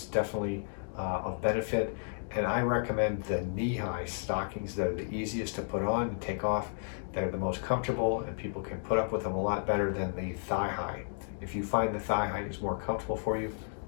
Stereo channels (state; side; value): silent; right; digital silence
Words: definitely of benefit. And I recommend the knee-high stockings that are the easiest to put on and take off. They're the most comfortable, and people can put up with them a lot better than the thigh-high. If you find the thigh-high is more comfortable for you,